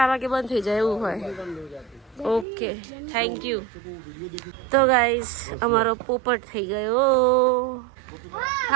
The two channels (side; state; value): left; drops out; at 2.5 s